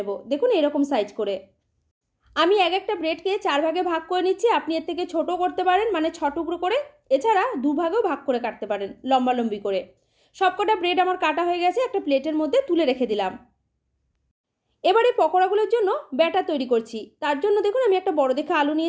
দেখুন এরকম সাইজ করে আমি একটা ব্রেডকে 4 ভাগে ভাগ করে নিচ্ছি। আপনি এর থেকে ছোট করতে পারেন, মানে 6 টুকরো করে। এছাড়া 2 ভাগেও ভাগ করে কাটতে পারেন, লম্বা লম্বি করে। সবকটা ব্রেড আমার কাটা হয়ে গেছে, একটা প্লেটের মধ্যে তুলে রেখে দিলাম। এবারে পকোড়াগুলোর জন্য ব্যাটার তৈরি করছি। তার জন্য দেখুন আমি একটা বড় দেখে আলু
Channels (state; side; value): identical; both; correlation 1.00